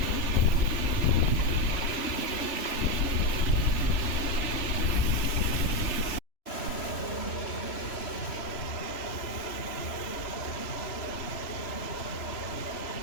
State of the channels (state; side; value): late; right; 3.0 ms